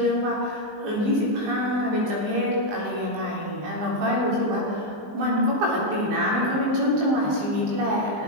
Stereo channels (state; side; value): late; left; 19 ms